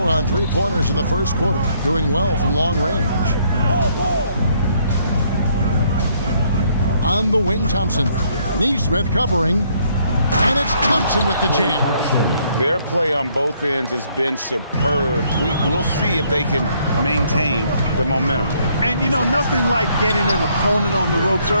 on three-pointers in the first quarter, doing well from long range. On the wing, Thompson. Neesmith covering, and it's Thompson with the jam. Their play on both ends has been superb. We'll see if they can maintain the momentum. And, you know, nothing like getting an opponent on the ropes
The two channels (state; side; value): inverted; both; correlation -0.68